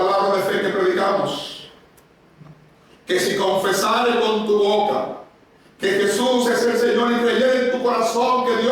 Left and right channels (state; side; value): identical; both; correlation 1.00